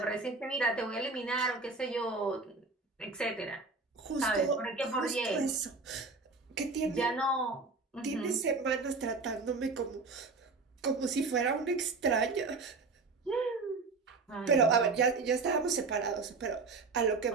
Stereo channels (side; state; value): left; quieter; 4.0 dB